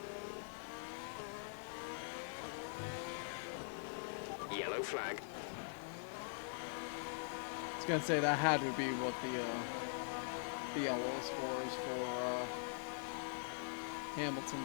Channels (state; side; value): silent; right; digital silence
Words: Yellow flag. I was gonna say that had to be what the yellow scores for